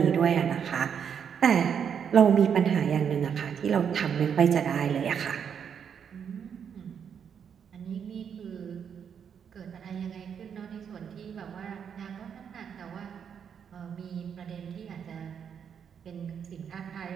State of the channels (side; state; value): left; quieter; 7.6 dB